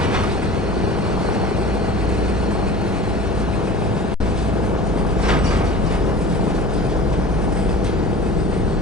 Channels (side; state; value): both; normal; correlation 0.38